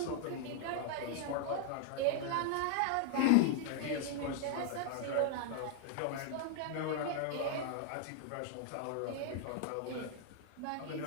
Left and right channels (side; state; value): both; different; correlation -0.01